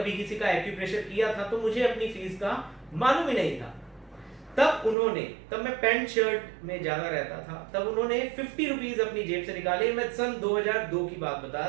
किसी का एक्यूप्रेशर किया था, तो मुझे अपनी फीस का मालूम ही नहीं था। तब मैं पैंट शर्ट में ज्यादा रहता था, तब उन्होंने 50 रुपीज अपनी जेब से निकाले। मैं सन 2002 की बात बता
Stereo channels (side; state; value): left; drops out; at 5.0 s